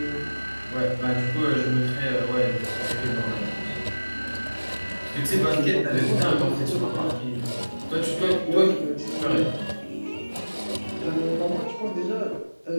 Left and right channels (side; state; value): both; inverted; correlation -1.00